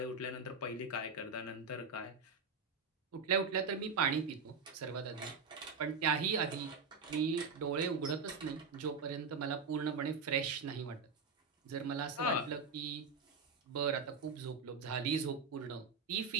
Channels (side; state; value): left; quieter; 4.6 dB